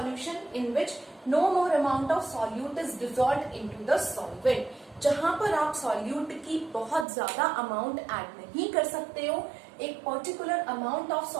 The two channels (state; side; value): drops out; left; at 7.1 s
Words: In which no more amount of solute is dissolved into the solvent. जहां पर आप सॉल्यूट की बहुत ज्यादा अमाउंट ऐड नहीं कर सकते हो, एक पर्टिकुलर अमाउंट ऑफ